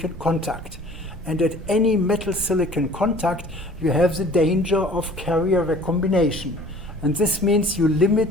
contact. And at any metal silicon contact, you have the danger of carrier recombination. And this means you limit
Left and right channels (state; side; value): normal; both; correlation 0.49